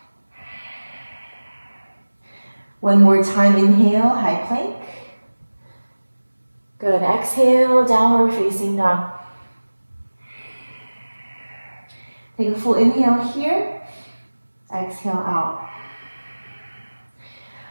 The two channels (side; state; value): both; inverted; correlation -1.00